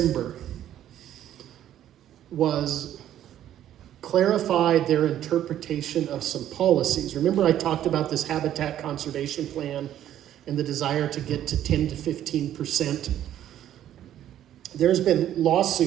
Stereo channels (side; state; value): left; quieter; 11.5 dB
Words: was clarify their interpretation of some policies. Remember I talked about this habitat conservation plan and the desire to get to 10 to 15%. There's been